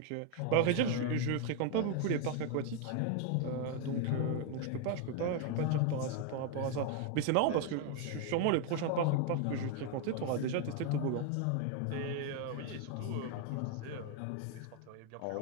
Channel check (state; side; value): different; both; correlation 0.01